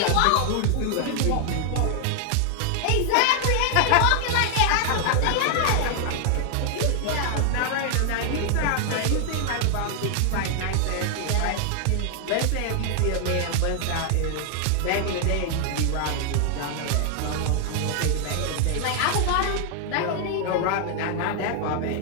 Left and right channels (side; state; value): both; different; correlation 0.00